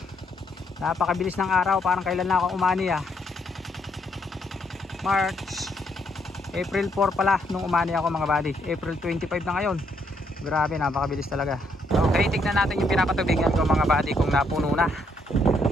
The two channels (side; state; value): both; normal; correlation 0.73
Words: Napakabilis ng araw, parang kailan na ako umani March, April 4 pala nung umani ako mga buddy. April 25 na ngayon. Grabe, napakabilis talaga. Okay, tignan natin yung pinapatubigan ko mga buddy kung napuno na.